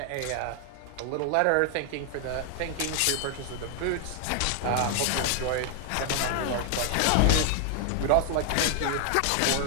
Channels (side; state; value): both; different; correlation 0.00